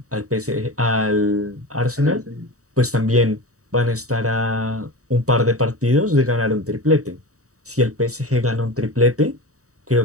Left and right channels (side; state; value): left; late; 0.65 ms